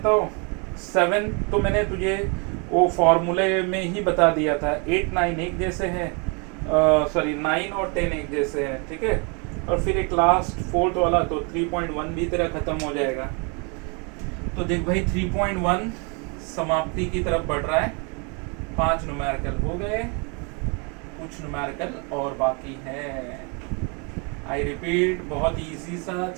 हूँ, 7 तो मैंने तुझे वो फॉर्मूले में ही बता दिया था, 8 9 एक जैसे हैं, सॉरी 9 और 10 एक जैसे हैं, ठीक है, और फिर एक लास्ट 4th वाला तो 3.1 भी तेरा खत्म हो जाएगा। तो देख भाई 3.1 समाप्ति की तरफ बढ़ रहा है, 5 न्यूमेरिकल हो गए, कुछ न्यूमेरिकल और बाकी है। आई रिपीट बहुत इजी सा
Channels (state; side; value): quieter; left; 33.8 dB